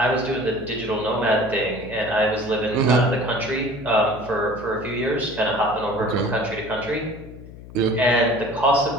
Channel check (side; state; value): left; noise; hum, 16 dB below the sound